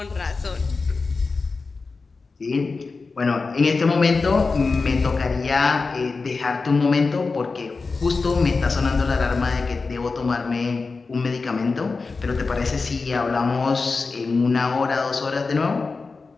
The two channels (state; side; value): quieter; right; 4.2 dB